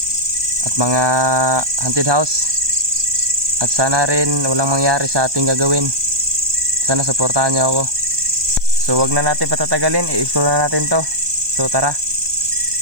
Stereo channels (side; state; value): left; late; 1.2 ms